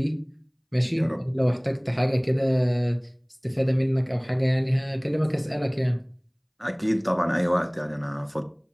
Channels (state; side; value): identical; both; correlation 1.00